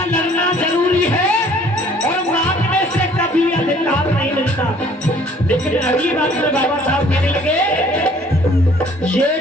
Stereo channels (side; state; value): both; normal; correlation 0.56